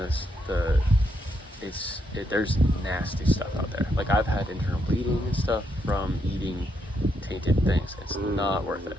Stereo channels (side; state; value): both; normal; correlation 0.78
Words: there's nasty stuff out there. Like I've had internal bleeding and stuff from eating tainted things. It's not worth it.